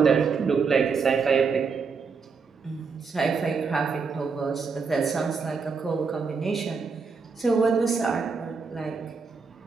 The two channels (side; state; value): left; quieter; 5.2 dB